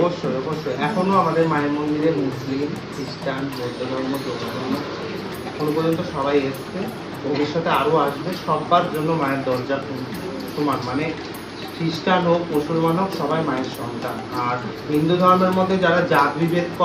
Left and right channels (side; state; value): both; identical; correlation 1.00